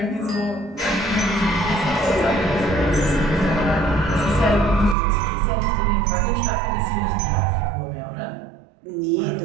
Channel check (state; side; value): drops out; left; at 5.0 s